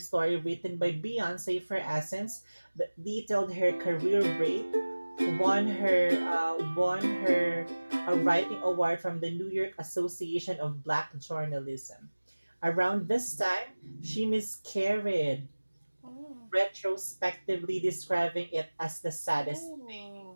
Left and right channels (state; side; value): inverted; both; correlation -1.00